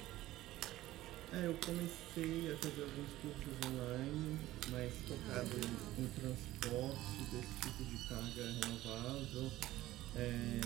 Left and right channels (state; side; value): quieter; left; 15.9 dB